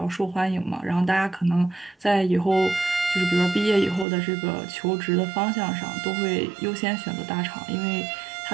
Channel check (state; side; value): drops out; left; at 4.0 s